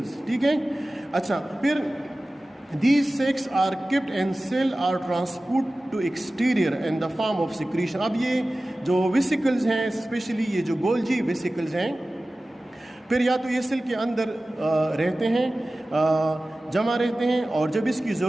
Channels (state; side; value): normal; both; correlation 0.96